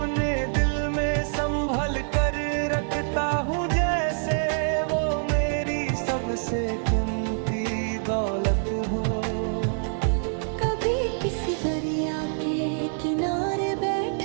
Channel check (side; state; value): left; silent; digital silence